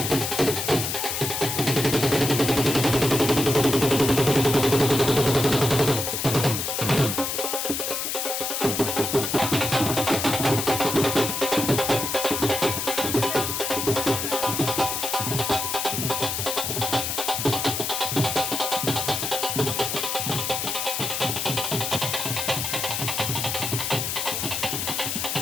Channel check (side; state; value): left; noise; hiss, 2 dB below the sound